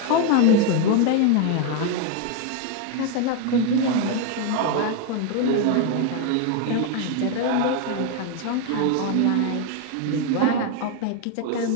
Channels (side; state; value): both; different; correlation 0.01